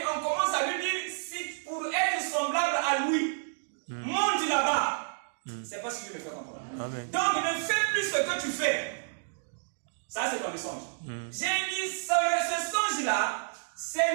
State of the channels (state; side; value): silent; left; digital silence